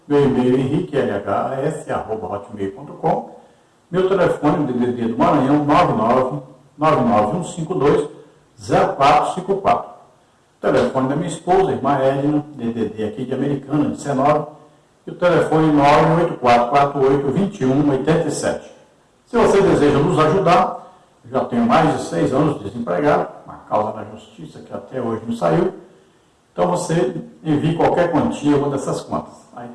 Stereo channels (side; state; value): both; identical; correlation 1.00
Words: Meu e-mail é henriquelhs@hotmail.com. Meu telefone, DDD do Maranhão, 99152-0454. O telefone da minha esposa, irmã Edna, DDD aqui de Americana, 19. E o telefone 98448-2187. Se você deseja nos ajudar, eu já tenho mais de 6 anos de desempregado, uma causa na justiça que até hoje não saiu. Então você envie qualquer quantia, uma dessas contas. Aí